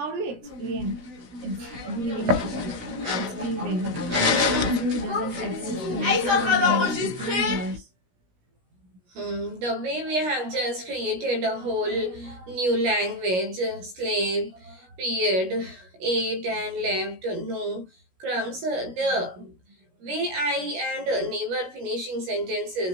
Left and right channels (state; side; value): late; left; 17 ms